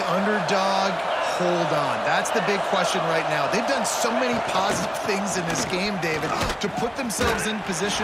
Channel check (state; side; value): identical; both; correlation 1.00